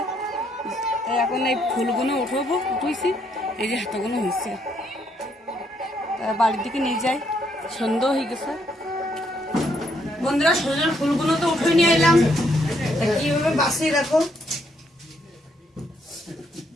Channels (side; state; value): both; normal; correlation 0.73